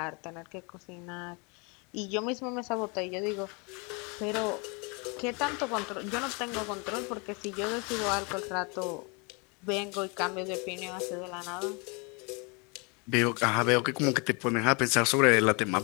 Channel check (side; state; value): right; quieter; 31.6 dB